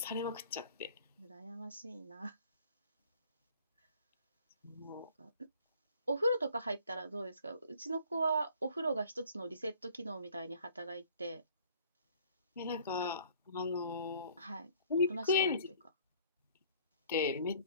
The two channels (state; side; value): inverted; both; correlation -0.54